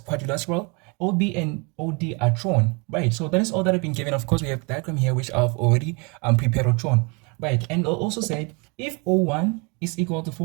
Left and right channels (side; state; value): left; quieter; 31.0 dB